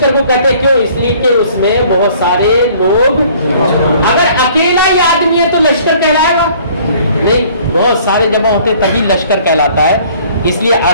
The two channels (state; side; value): inverted; both; correlation -0.55